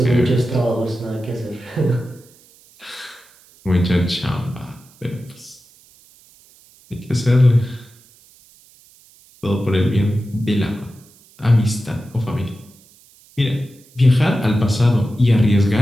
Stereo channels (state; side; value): noise; right; hiss, 28 dB below the sound